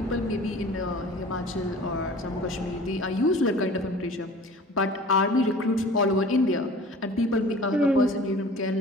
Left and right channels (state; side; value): normal; both; correlation 0.44